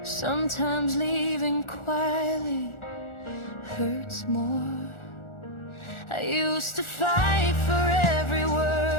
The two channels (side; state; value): right; late; 1.4 ms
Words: Sometimes leaving quietly hurts more. I used to fight for every